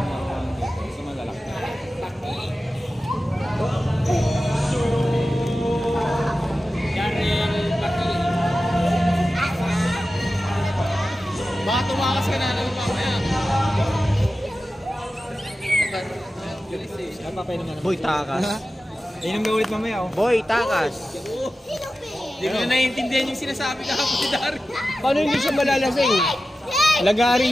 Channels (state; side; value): normal; both; correlation 0.94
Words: marunong dito. Kasi malalaki. Yarel, Baki. Baka tumakas ka na naman mamaya. Boy, takas. Inom na ulit mamaya, oh. Boy, takas. Hindi ko na naiintindihan yung sinasabi kahapon si Darwin. Paano hindi siya malalasing? Lagari